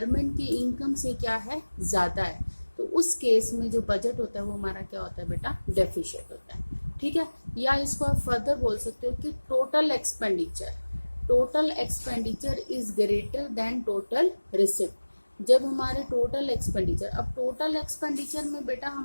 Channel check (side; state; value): both; inverted; correlation -1.00